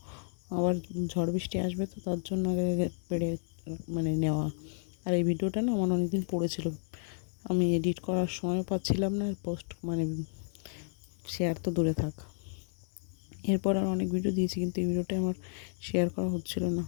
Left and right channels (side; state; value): right; silent; digital silence